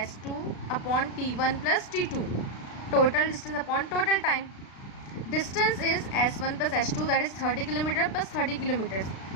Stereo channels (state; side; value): late; right; 36 ms